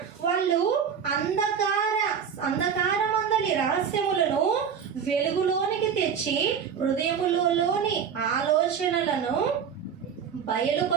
వాళ్ళు అంధకారమందలి రహస్యములను వెలుగులోనికి తెచ్చి హృదయములోని ఆలోచనలను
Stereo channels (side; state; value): left; quieter; 7.3 dB